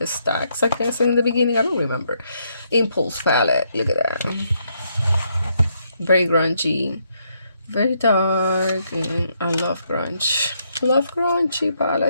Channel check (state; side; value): inverted; both; correlation -0.76